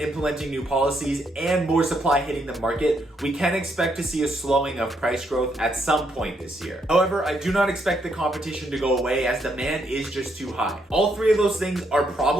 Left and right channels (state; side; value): normal; both; correlation 0.75